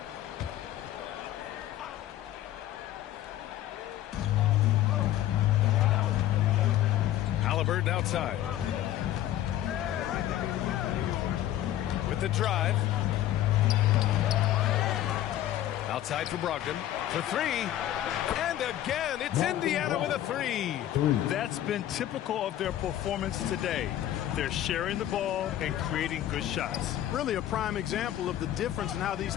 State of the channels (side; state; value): right; quieter; 12.8 dB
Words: Haliburton outside. With the drive. Outside for Brogdon. For three. And again, it's Indiana with a three. That's been typical of their performance today. They're sharing the ball and creating good shots. Really a prime example of the difference in how these